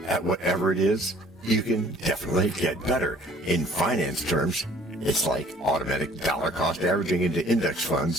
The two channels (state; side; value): normal; both; correlation 0.54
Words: at whatever it is, you can definitely get better. In finance terms, it's like automatic dollar cost averaging into index